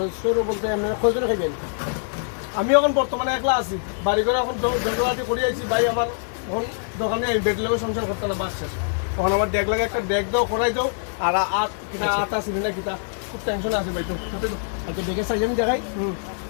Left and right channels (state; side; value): silent; right; digital silence